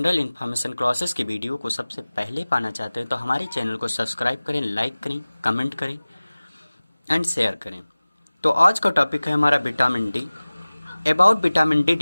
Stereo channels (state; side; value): inverted; both; correlation -0.99